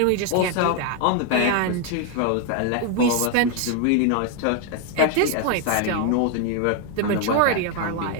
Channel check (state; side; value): different; both; correlation 0.01